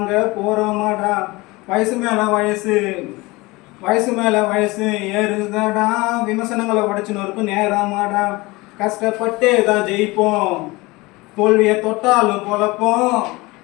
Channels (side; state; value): right; quieter; 22.6 dB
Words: போகிறோமாடா. வயசு மேலே வயசு வயசு மேலே வயசு ஏறுதடா, விமர்சனங்களை உடைச்சுன்னு இருக்கும் நேரமாடா. கஷ்டப்பட்டே தான் ஜெயிப்போம், தோல்வியை தொட்டாலும் பொழப்போம்.